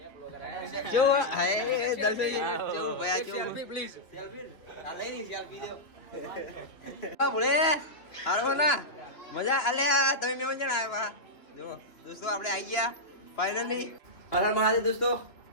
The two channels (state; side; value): late; right; 3.1 ms